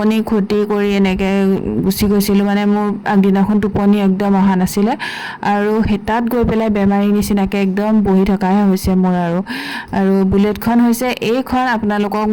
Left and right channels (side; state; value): both; identical; correlation 1.00